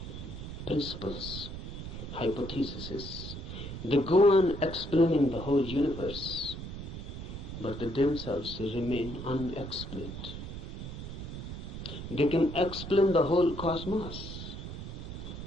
principles, hypotheses. They go on explaining the whole universe, but they themselves remain unexplained. They can explain the whole cosmos.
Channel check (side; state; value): right; noise; rumble, 8 dB below the sound